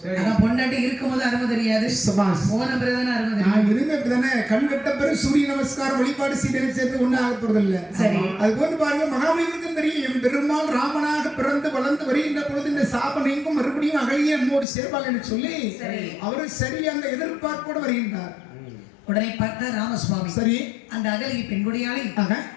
அதான் பொண்டாட்டி இருக்கும்போது அருமை தெரியாது, சபாஸ். போன பிறகுதானே அருமை தெரியும். நான் இருந்த இப்பதானே கண் வெட்ட பிறகு சூரிய நமஸ்காரம் வழிபாடு செய்து சேர்ந்து ஒண்ணு ஆக போறது இல்ல. சரி அது போன்று பாருங்க மகாபலிபுரத்துக்கும் தெரியும் என் பெருமாள் ராமனாக பிறந்து வளர்ந்து வருகின்ற பொழுது இந்த சாபம் நீங்கும் மறுபடியும் அகலியே நம்மோடு சேர்வாள் என்று சொல்லி அவரு சரி அந்த எதிர்பார்ப்போடு வருகின்றார். உடனே பார்த்த ராமசுவாமி சரி அந்த அகலிகை பெண்குடியாலை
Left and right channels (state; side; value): drops out; right; at 14.7 s